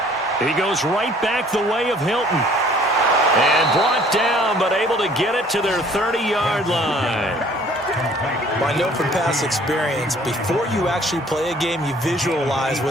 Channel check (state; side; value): normal; both; correlation 0.55